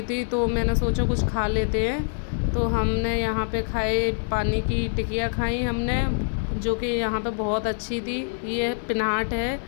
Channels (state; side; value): silent; right; 58 dB below the other